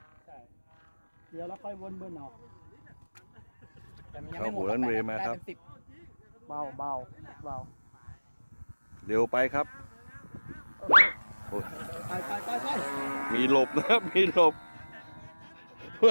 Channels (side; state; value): both; inverted; correlation -1.00